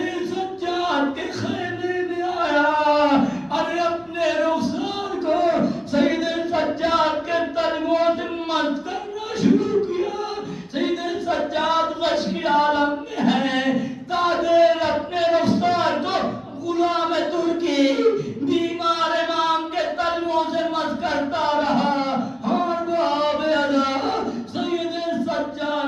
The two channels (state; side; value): identical; both; correlation 1.00